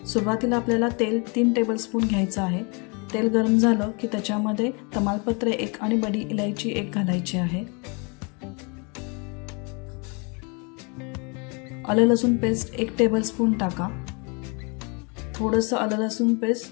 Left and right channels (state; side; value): quieter; right; 32.7 dB